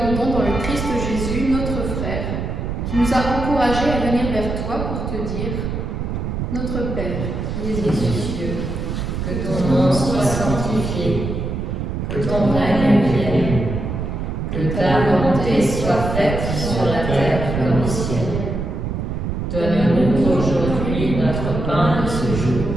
dans le Christ Jésus, notre frère, qui nous a encouragés à venir vers toi pour te dire « Notre Père, qui es aux cieux, que ton nom soit sanctifié, que ton règne vienne, que ta volonté soit faite sur la terre comme au ciel. Donne-nous aujourd'hui notre pain de ce jour.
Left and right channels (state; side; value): noise; right; rumble, 3 dB below the sound